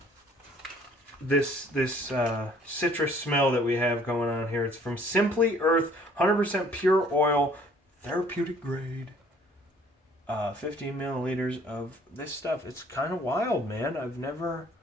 this citrus smell that we have going on here. It's from Simply Earth, 100% pure oil, therapeutic grade. 15 milliliters of this stuff. It's kind of wild, man. I've never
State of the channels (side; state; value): both; normal; correlation 0.57